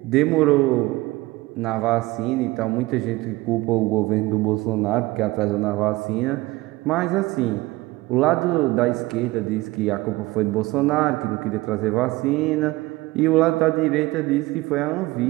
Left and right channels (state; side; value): quieter; left; 20.2 dB